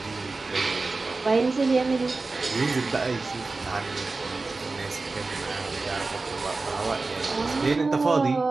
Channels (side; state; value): left; quieter; 3.7 dB